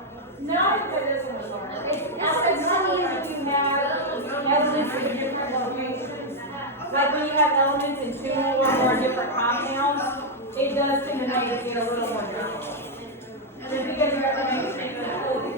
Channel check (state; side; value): normal; both; correlation 0.00